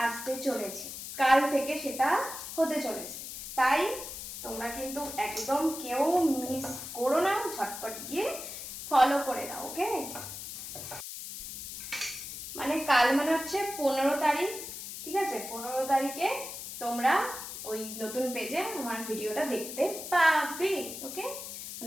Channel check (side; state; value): left; noise; hiss, 9 dB below the sound